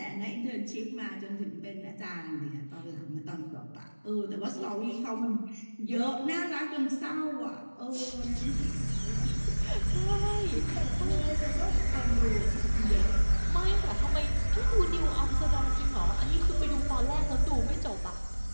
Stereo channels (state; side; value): inverted; both; correlation -1.00